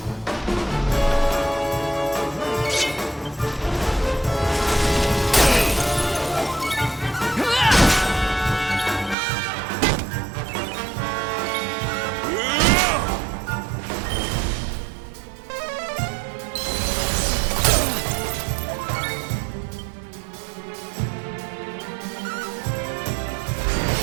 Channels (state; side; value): drops out; left; at 9.2 s